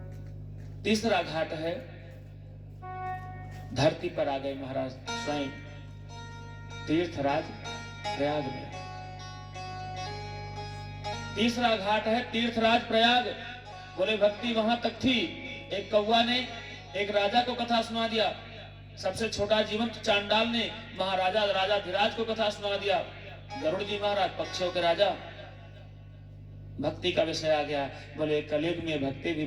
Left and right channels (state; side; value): identical; both; correlation 1.00